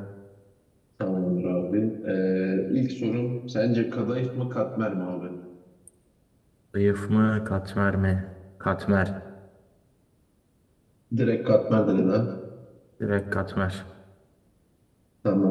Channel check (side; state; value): both; identical; correlation 1.00